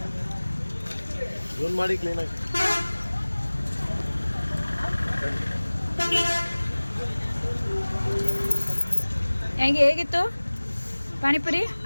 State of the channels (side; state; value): both; inverted; correlation -1.00